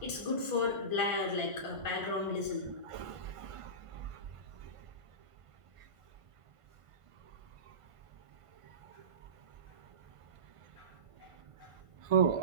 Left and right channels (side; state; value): left; late; 1.5 ms